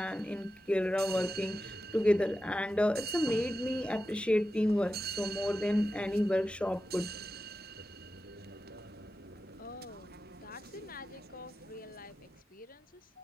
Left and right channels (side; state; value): both; normal; correlation 0.92